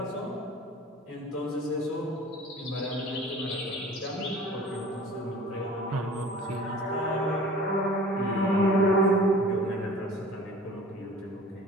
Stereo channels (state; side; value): normal; both; correlation 0.44